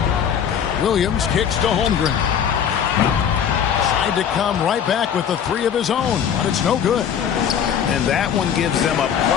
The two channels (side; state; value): right; quieter; 8.4 dB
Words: Williams kicks to Holmgren. Tried to come right back with the three of his own, but it's no good. And that one gives them a